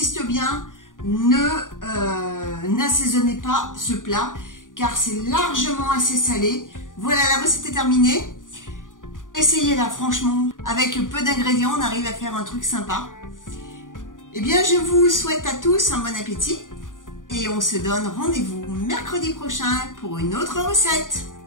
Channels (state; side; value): late; right; 0.88 ms